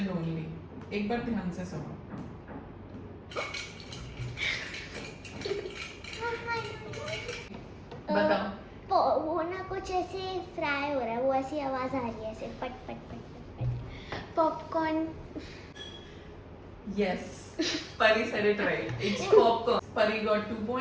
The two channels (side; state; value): both; identical; correlation 1.00